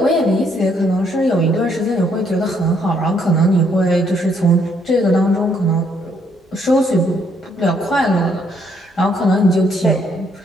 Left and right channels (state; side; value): normal; both; correlation 0.70